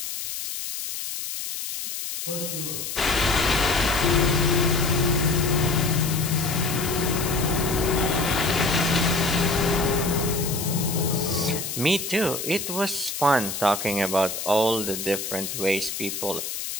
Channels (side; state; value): left; noise; hiss, 6 dB below the sound